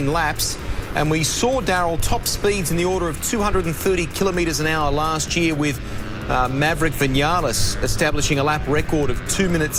laps. And we saw, Darryl, top speeds in the order of 230 kilometres an hour last year, with Maverick Vinales establishing a lap record of 2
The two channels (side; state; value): both; identical; correlation 1.00